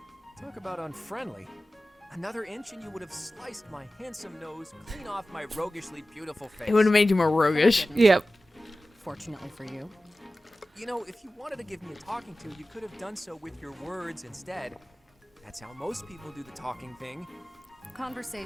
Talk about unfriendly. Another inch and you would have sliced my handsome nose clean off my roguishly beautiful face. It would have made you more roguish. Yep. Fortunately for you. You know, if you wanted to give me a talking to, you could have done so with your words instead. That's how most people do the talking thing.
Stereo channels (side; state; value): both; normal; correlation 0.95